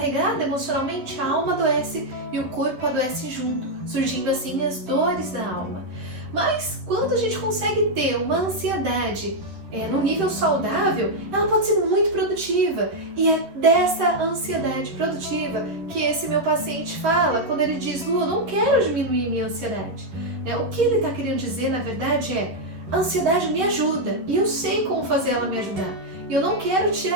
emocionalmente, a alma adoece e o corpo adoece junto, surgindo assim as dores da alma. Mas quando a gente consegue ter uma ansiedade no nível saudável, ela pode ser muito produtiva. E é dessa ansiedade produtiva que esse meu paciente fala quando ele diz: Lu, eu não quero diminuir minha ansiedade. O que ele está querendo dizer, na verdade, é: a ansiedade me ajuda e eu sei como fazer ela me ajudar. E eu não quero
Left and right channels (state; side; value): late; left; 12 ms